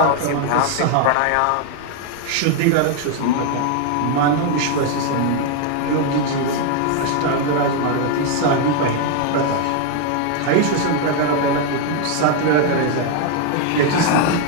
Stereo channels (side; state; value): both; different; correlation 0.01